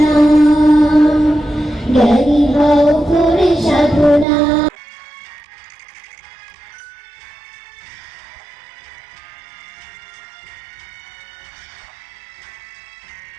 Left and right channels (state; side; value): drops out; left; at 4.2 s